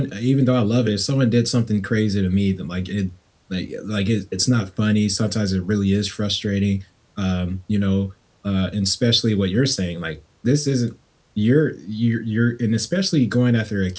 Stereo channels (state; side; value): identical; both; correlation 1.00